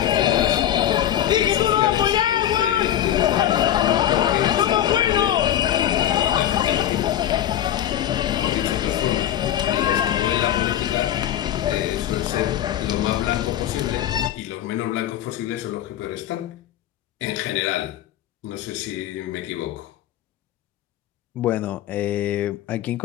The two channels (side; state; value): right; quieter; 11.4 dB